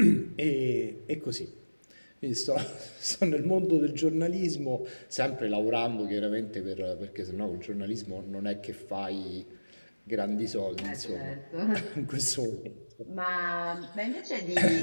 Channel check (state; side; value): inverted; both; correlation -1.00